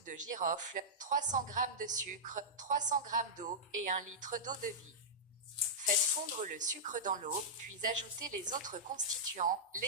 de girofle, 300 g de sucre, 300 g d'eau, et 1 litre d'eau de vie. Faites fondre le sucre dans l'eau, puis ajoutez les autres constituants,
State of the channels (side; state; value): both; normal; correlation -0.12